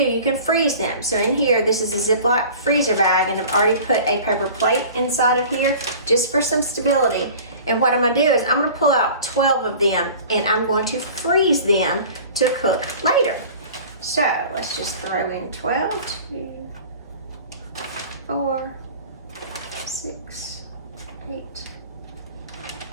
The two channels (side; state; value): both; inverted; correlation -0.43